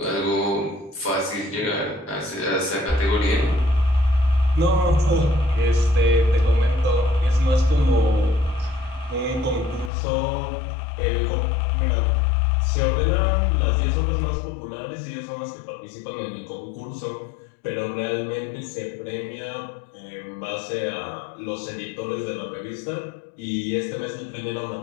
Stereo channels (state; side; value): drops out; right; at 9.9 s